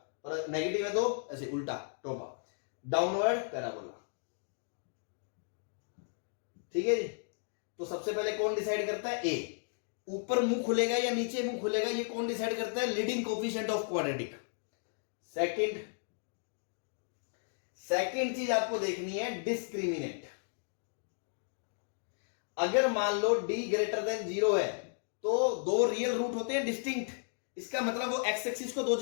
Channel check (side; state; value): right; silent; digital silence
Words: और नेगेटिव है तो ऐसे उल्टा टोपा, डाउनवर्ड पैराबोला, ठीक है जी। तो सबसे पहले कौन डिसाइड करता है, ए। ऊपर मुंह खुलेगा या नीचे मुंह खुलेगा, ये कौन डिसाइड करता है, leading coefficient of quadratic. Second चीज आपको देखनी है, डिस्क्रिमिनेंट। अगर मान लो d ग्रेटर देन 0 है तो दो रियल रूट होते हैं डिस्टिंक्ट, इसका मतलब वो एक्स एक्सिस को दो